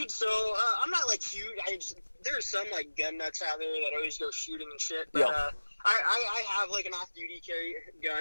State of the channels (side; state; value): both; inverted; correlation -1.00